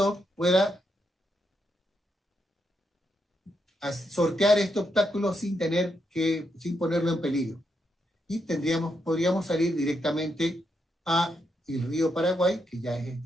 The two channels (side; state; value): both; normal; correlation 0.81